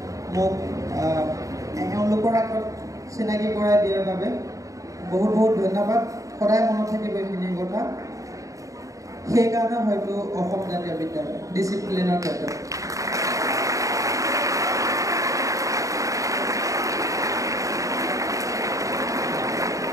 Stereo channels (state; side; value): late; left; 0.16 ms